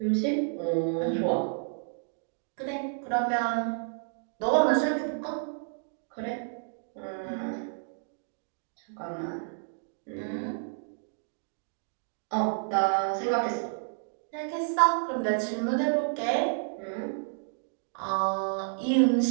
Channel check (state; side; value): silent; left; digital silence